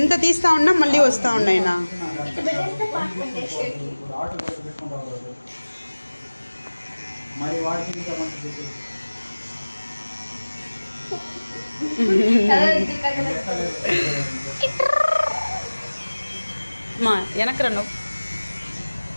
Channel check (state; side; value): inverted; both; correlation -1.00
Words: తీస్తా ఉన్నా మళ్ళీ వస్తా ఉన్నాయినా. మా వెనక్రా నువ్వు.